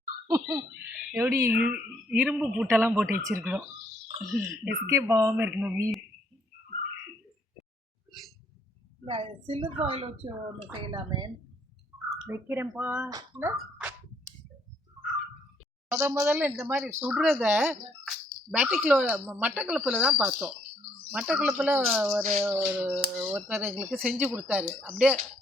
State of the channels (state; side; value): normal; both; correlation 0.68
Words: எப்படி இரும்பு பூட்டெல்லாம் போட்டு வச்சிருக்கிறோம். எஸ்கேப் ஆகாமல் இருக்கணும் மீன். சில்வர் ஃபாயில் வச்சு ஒன்று செய்யலாமே. வைக்கிறேன்ப்பா. இல்லை முதல்ல இந்த மாதிரி சுடுறத மட்டக்களப்பில் தான் பார்த்தோம். மட்டக்களப்பில் ஒருத்தர் எங்களுக்கு செஞ்சு கொடுத்தாரு. அப்படியே